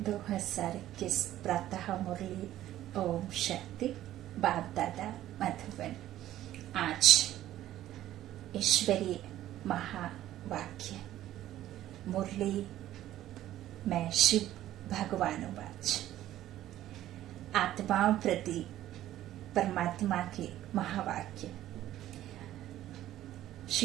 प्रातः मुरली। ओम शांति। बाप दादा मधुबन। आज ईश्वरीय महावाक्य मुरली में शिव भगवानुवाच। आत्माओं प्रति परमात्मा के महावाक्य।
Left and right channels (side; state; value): left; quieter; 13.4 dB